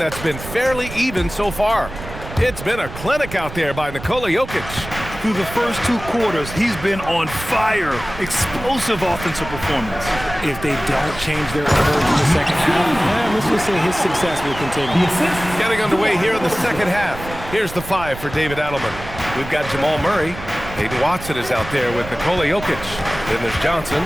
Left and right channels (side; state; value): right; noise; rumble, 12 dB below the sound